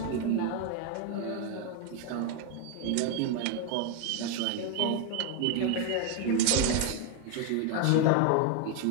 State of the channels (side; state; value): both; different; correlation 0.01